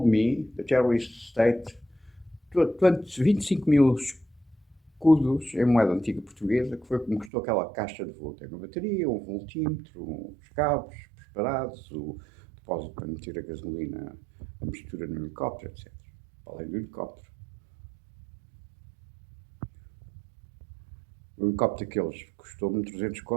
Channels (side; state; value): left; drops out; at 7.3 s